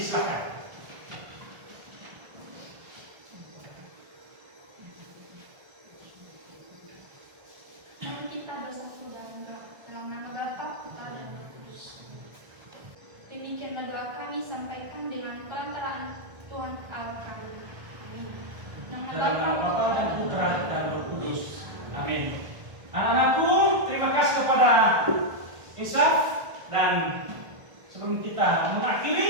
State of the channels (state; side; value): late; left; 1.4 ms